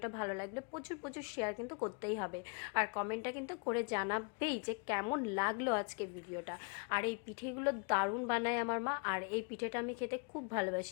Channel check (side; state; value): right; quieter; 36.8 dB